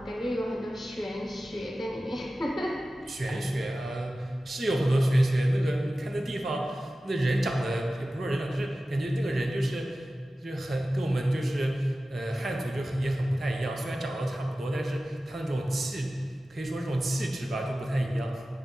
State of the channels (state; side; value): normal; both; correlation 0.95